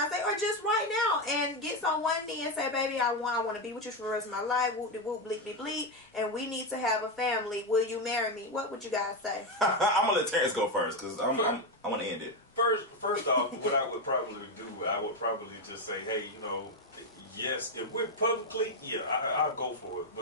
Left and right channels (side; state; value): both; normal; correlation 0.08